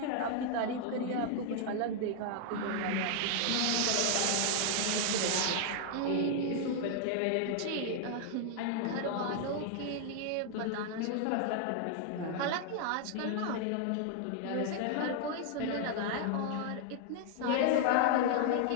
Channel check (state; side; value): different; both; correlation -0.01